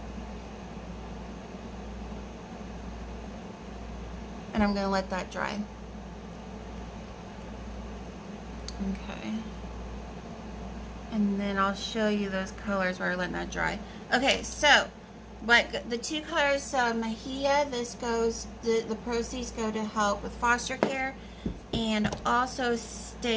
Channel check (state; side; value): identical; both; correlation 1.00